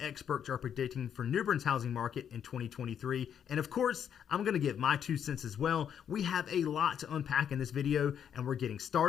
are predicting for New Bern's housing market in 2023, and of course, I'm going to give my 2 cents as well. We have a lot to unpack in this video, and we're getting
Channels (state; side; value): quieter; right; 8.6 dB